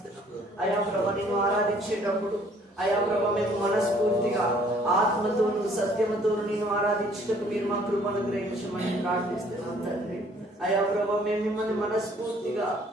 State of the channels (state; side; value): normal; both; correlation 0.59